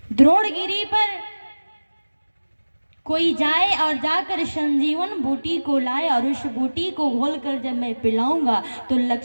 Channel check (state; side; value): inverted; both; correlation -1.00